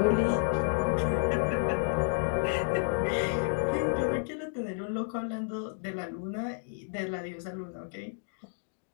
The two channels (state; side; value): silent; right; digital silence